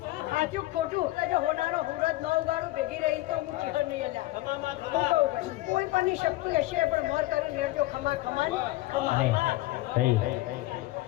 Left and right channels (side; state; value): right; quieter; 18.1 dB